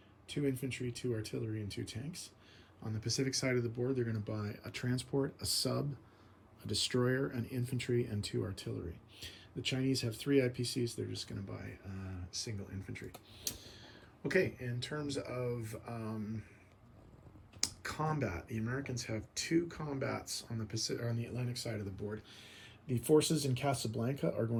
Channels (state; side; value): identical; both; correlation 1.00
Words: 2 infantry, 2 artillery, and 2 tanks. On the Pacific side of the board, they're going to buy a transport, a sub, a destroyer, an infantry, and 2 artillery. The Chinese have 3 IPCs. They're just going to buy single infantry. Okay, in terms of combat, the Americans have 2 combats on the Atlantic side of the board. The forces in Casablanca are